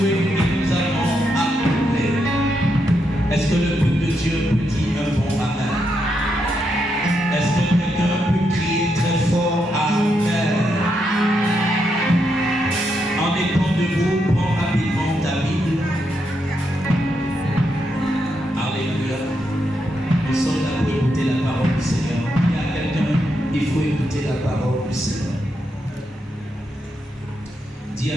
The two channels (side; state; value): both; normal; correlation 0.81